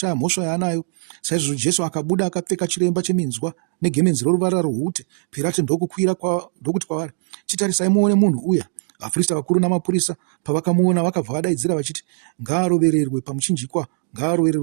mhosva yaanayo. Saizvozvo Jesu akabuda akapfeka chiremba cheminzwa negemenzi roruvara rwohute. Pirato ndokuti kwavari, chitarisai muone munhu uya. Vaprista vakuru namapurisa pavakamuona vakabva vadaidzira vachiti, ngaarovererwe pamuchinjikwa,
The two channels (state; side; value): silent; left; digital silence